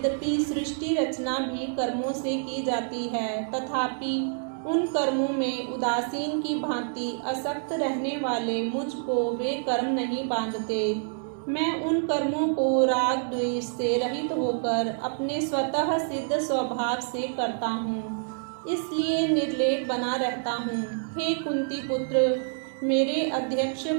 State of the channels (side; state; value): left; silent; 60 dB below the other